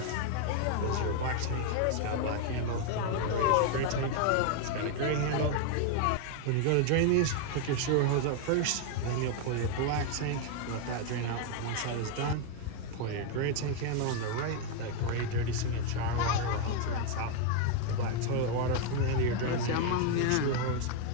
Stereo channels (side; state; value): both; different; correlation 0.01